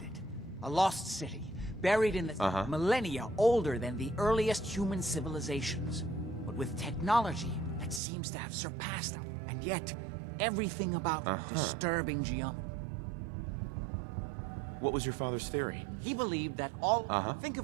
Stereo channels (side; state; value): left; drops out; at 8.0 s